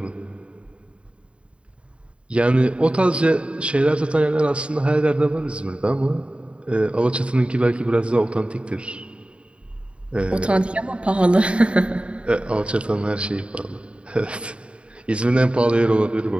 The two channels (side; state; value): left; late; 0.058 ms